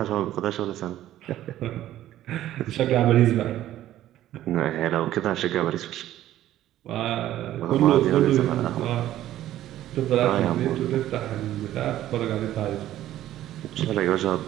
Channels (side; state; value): left; quieter; 13.3 dB